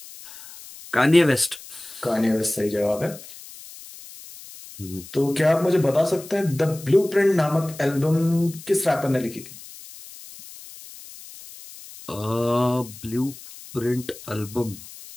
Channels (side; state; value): left; noise; hiss, 17 dB below the sound